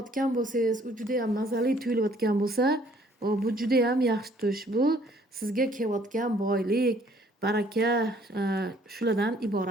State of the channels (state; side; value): normal; both; correlation 0.60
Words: bo'lsangiz, u juda ham mazali tuyulayotgan bo'lsa, bu juda ham yaxshi tush. Bu sizga kelayotgan boylik, baraka shulardan